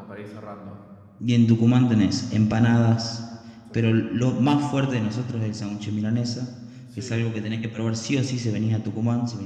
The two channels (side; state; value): both; identical; correlation 1.00